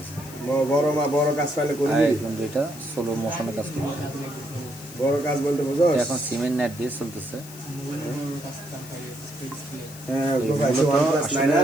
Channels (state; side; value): noise; left; hiss, 17 dB below the sound